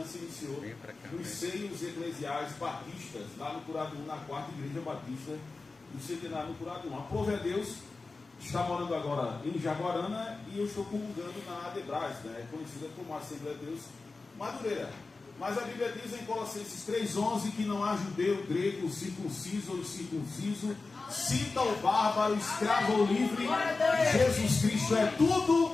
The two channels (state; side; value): quieter; right; 3.8 dB